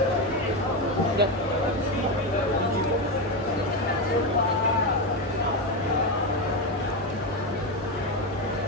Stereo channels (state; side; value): normal; both; correlation 0.12